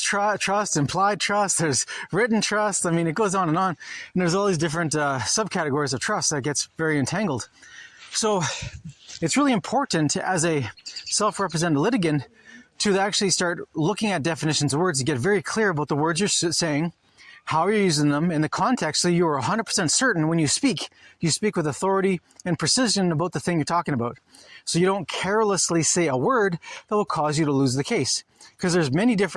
trust, implied trust, there's written trust. I mean, it goes on. And there's all these different subcategories of trust that gets very entangled. So it's really important as a self-represented litigant to actually start looking at definitions of words to get very clear about the words you're saying, how you're using them in the context so you are 100% certain when you speak with authority and precision about the thing you're talking about. So you don't carelessly say a word that will cause you to lose the case. Because there's many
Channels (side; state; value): both; identical; correlation 1.00